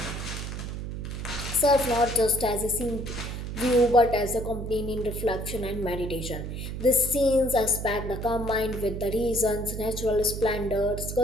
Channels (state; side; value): noise; right; hum, 6 dB below the sound